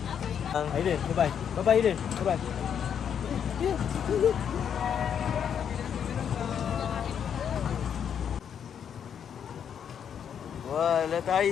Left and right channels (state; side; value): quieter; right; 8.2 dB